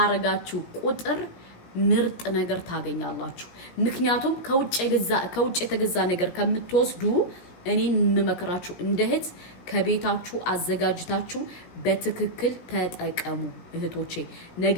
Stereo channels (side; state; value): right; late; 17 ms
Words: ቁጥር ምርጥ ነገር ታገኛላችሁ ምክንያቱም ከውጭ የተገዛ ነገር ከምትወስዱ እኔን መመከራችሁ እንደህት ከቤታችሁ አዘጋጅታችሁ በትክክል ተጠቀሙ እህቶቼ